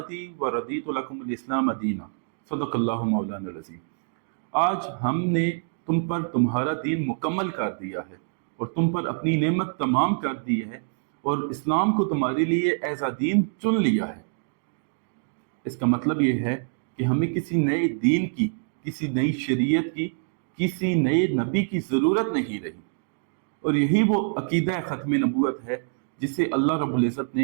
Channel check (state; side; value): silent; left; digital silence